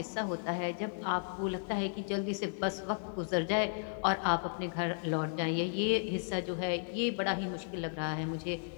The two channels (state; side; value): silent; right; digital silence